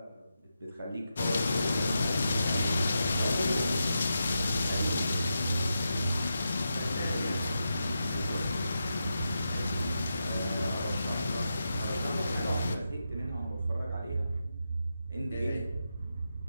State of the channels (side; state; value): both; inverted; correlation -0.87